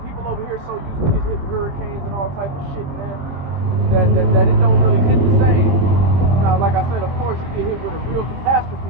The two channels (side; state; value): left; late; 22 ms